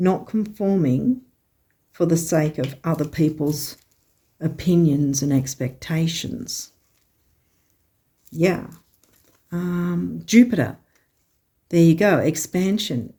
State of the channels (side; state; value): both; identical; correlation 1.00